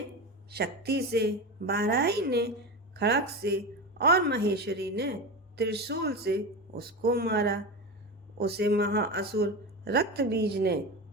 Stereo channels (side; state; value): both; normal; correlation 0.22